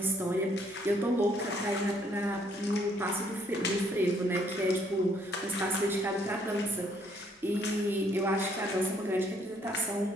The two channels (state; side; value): normal; both; correlation 0.67